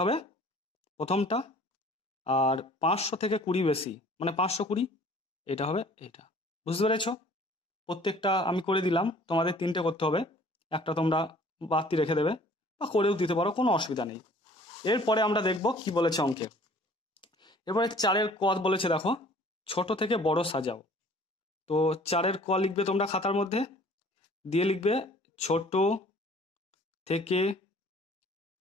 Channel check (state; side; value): normal; both; correlation 0.52